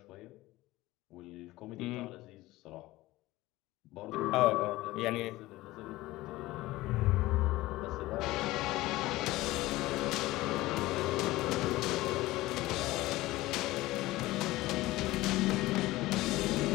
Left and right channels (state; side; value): quieter; right; 18.2 dB